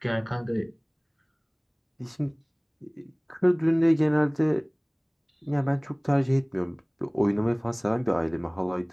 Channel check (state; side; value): identical; both; correlation 1.00